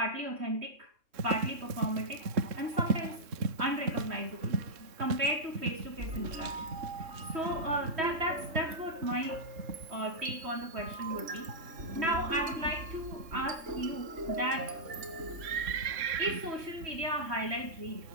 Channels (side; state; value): left; late; 3.6 ms